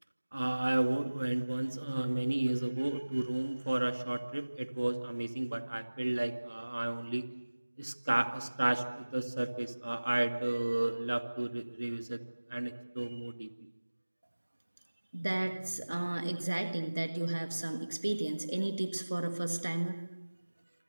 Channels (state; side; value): inverted; both; correlation -1.00